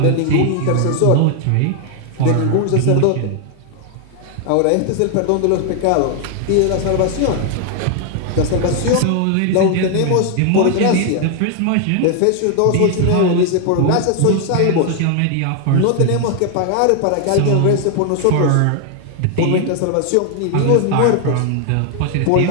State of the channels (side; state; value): both; different; correlation 0.00